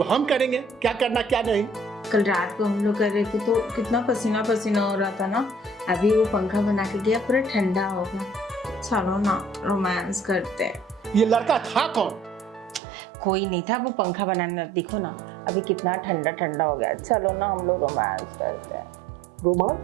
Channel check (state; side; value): drops out; left; at 12.8 s